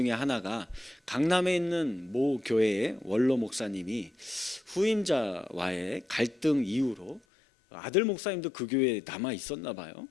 하나가 강남에 있는 모 교회의 원로 목사님이 후임자와의 갈등 이후로, 아들 목사님도 그 교회에 남아 있었나 봐요.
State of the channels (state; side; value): drops out; right; at 7.2 s